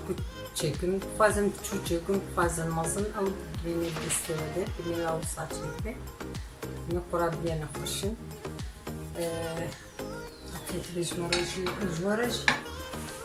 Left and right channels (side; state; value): both; identical; correlation 1.00